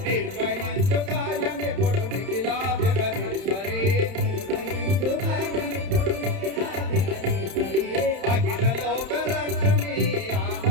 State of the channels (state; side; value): late; left; 31 ms